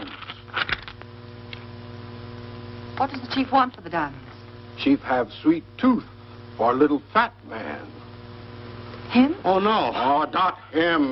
What does the chief want for the diamonds? Chief have sweet tooth for little fat man. Him? Oh, no. Oh, not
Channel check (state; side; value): identical; both; correlation 1.00